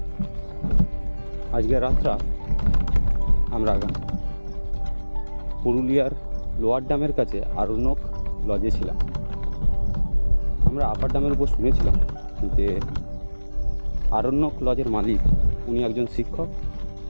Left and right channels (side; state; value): both; inverted; correlation -1.00